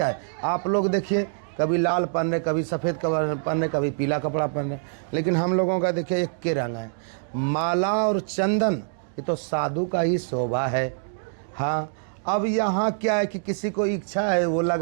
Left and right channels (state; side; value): silent; left; digital silence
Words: है? आप लोग देखिए, कभी लाल पहन रहे, कभी सफ़ेद कपड़ा पहन रहे, कभी पीला कपड़ा पहन रहे, लेकिन हम लोगों का देखिए एक के रंग है। माला और चंदन ये तो साधु का ही शोभा है। हाँ, अब यहाँ क्या है कि किसी को इच्छा है वो